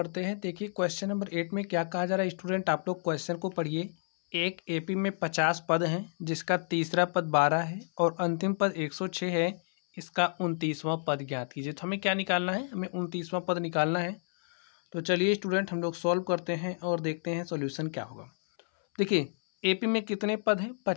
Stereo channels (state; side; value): silent; right; 58 dB below the other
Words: हैं। देखिए क्वेश्चन नंबर 8 में क्या कहा जा रहा है स्टूडेंट, आप लोग क्वेश्चन को पढ़िए। एक एपी में 50 पद हैं, जिसका तीसरा पद 12 है और अंतिम पद 106 है। इसका 29वां पद ज्ञात कीजिए। तो हमें क्या निकालना है? हमें 29वां पद निकालना है। तो चलिए स्टूडेंट, हम लोग सॉल्व करते हैं और देखते हैं सोल्यूशन क्या होगा। देखिए एपी में कितने पद हैं?